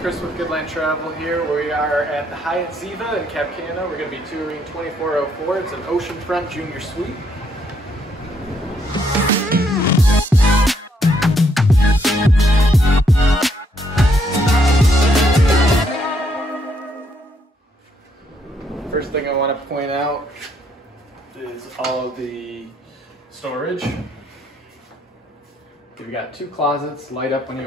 with Goodland Travel here. We are at the Hyatt Ziva in Cap Cana. We're going to be touring 2404. It's an oceanfront junior suite. First thing I want to point out is all of the storage. You've got two closets, light up when you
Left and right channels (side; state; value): both; normal; correlation 0.72